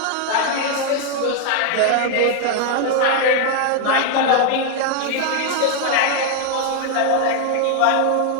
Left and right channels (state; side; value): different; both; correlation 0.01